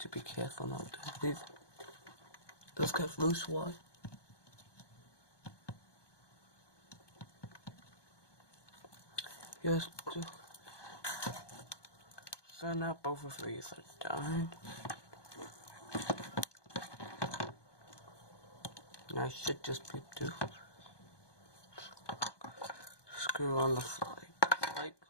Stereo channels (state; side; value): late; right; 1.2 ms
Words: be careful not to leave those kind of loose wires. Yes, so now both of these are done. I should just be able to screw on the flight